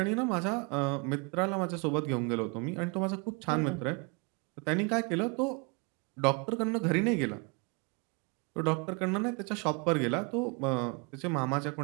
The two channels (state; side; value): quieter; left; 31.6 dB